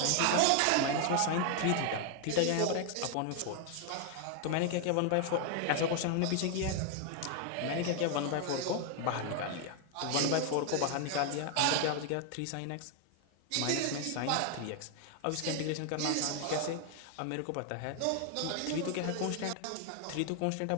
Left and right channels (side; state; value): both; different; correlation 0.00